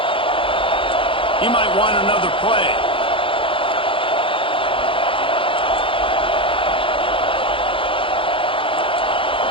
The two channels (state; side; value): late; right; 0.25 ms